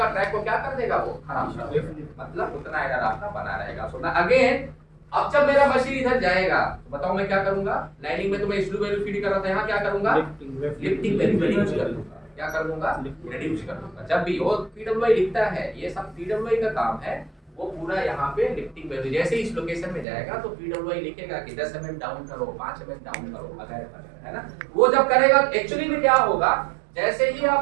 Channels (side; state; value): left; drops out; at 20.1 s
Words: ट्रैक को क्या कर देगा? वो खराब कर देगा। मतलब उतना एरर आपका बना रहेगा। सो अगेन, अब जब मेरा मशीन इधर जाएगा तो बताओ मैं क्या करूंगा? लाइनिंग में तो मैं स्लो वैल्यू फीड कर रहा था, यहाँ क्या करूंगा? लिफ्टिंग वैल्यू रिड्यूस कर दूंगा। क्या कर दूंगा? रिड्यूस कर दूंगा। जब भी वो पीडब्ल्यूआई लिखता है, ये सब पीडब्ल्यूआई का काम है, वो पूरा यहाँ पे लिफ्टिंग वैल्यू जैसे इस लोकेशन में जाएगा तो पीडब्ल्यूआई लिखेगा कि 10 mm डाउन करो, 5 mm डाउन करो, वगैरह, है ना? वो जब करेगा एक्चुअली में क्या होगा? जैसे ही